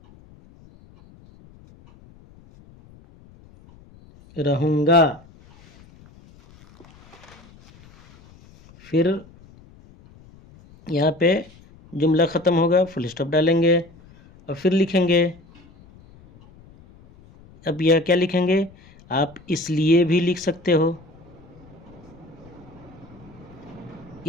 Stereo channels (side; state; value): left; noise; rumble, 25 dB below the sound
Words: रहूँगा। फिर यहाँ पे जुमला ख़त्म होगा, फुल स्टॉप डालेंगे और फिर लिखेंगे। अब यह क्या लिखेंगे? आप इसलिए भी लिख सकते हो,